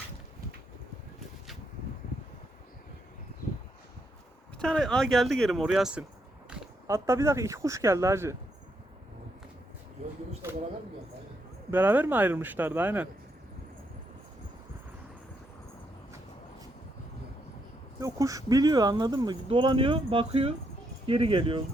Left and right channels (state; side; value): normal; both; correlation 0.78